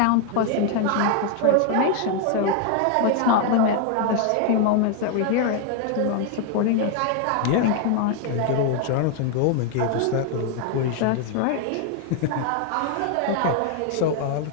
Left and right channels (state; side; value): different; both; correlation 0.00